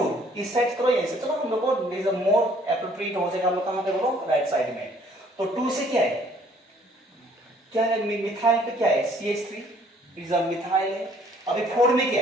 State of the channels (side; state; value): both; normal; correlation 0.60